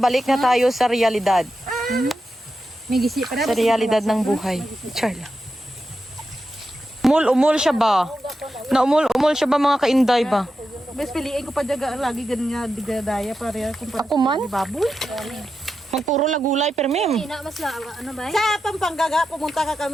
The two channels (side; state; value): both; normal; correlation 0.89